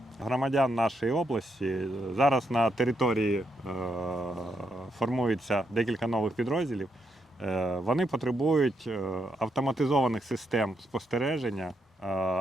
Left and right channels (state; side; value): normal; both; correlation 0.80